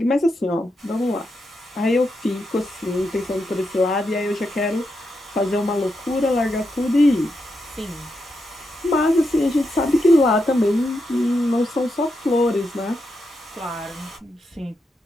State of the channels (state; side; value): normal; both; correlation 0.84